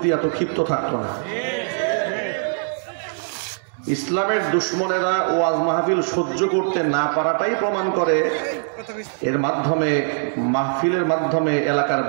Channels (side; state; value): left; silent; digital silence